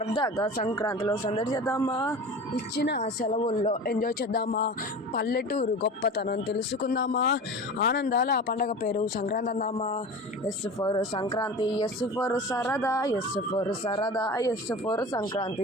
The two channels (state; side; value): normal; both; correlation 0.34